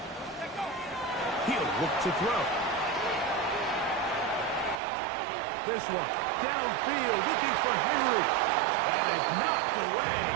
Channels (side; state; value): left; drops out; at 4.8 s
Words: He'll look to throw. This one, downfield, looking for Henry. That is knocked away,